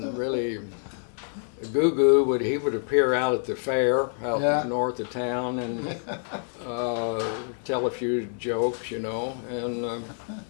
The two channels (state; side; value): silent; right; digital silence